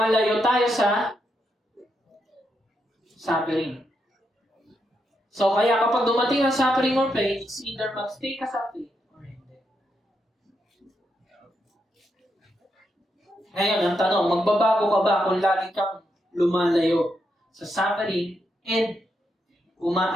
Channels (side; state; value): both; normal; correlation 0.81